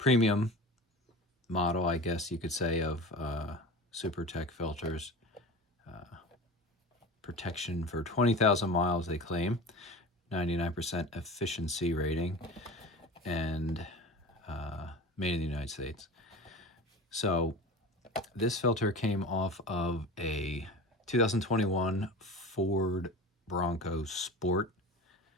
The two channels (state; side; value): normal; both; correlation 0.34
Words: model, I guess you could say, of Super Tech filters. Protection for 20,000 miles, they claim. 99% efficiency rating, and made in the United States. So this filter came off of a 2021 Ford Bronco Sport